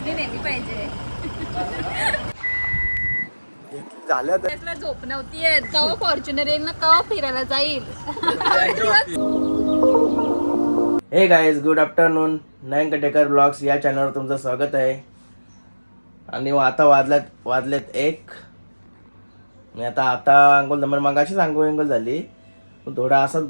नेली पाहिजे. झालं तर त्यातला झोप नव्हती येत. कवा फॉर्च्युनर येईल ना कवा फिरायला जाईल. हे गाईज गुड आफ्टरनून. नयन कटेकर ब्लॉग्स या चॅनलवर तुमचं स्वागत आहे. आणि आता वाजलेत 1. मी आता अंघोळ मगाशीच अंघोळ झाली, थोडा असंच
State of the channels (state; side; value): inverted; both; correlation -1.00